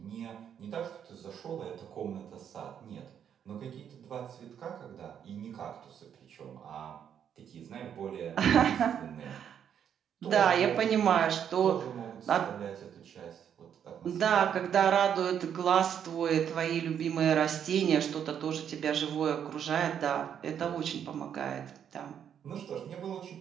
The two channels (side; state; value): left; quieter; 8.7 dB